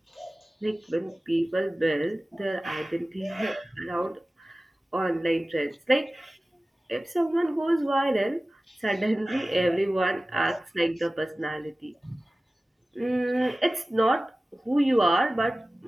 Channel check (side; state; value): both; normal; correlation 0.97